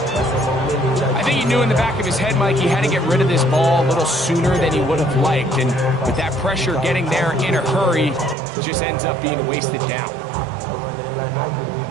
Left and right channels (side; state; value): left; drops out; at 8.3 s